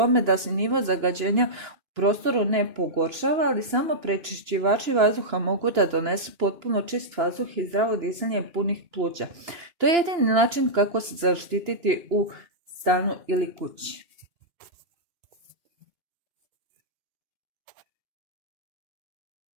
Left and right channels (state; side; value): late; left; 2.9 ms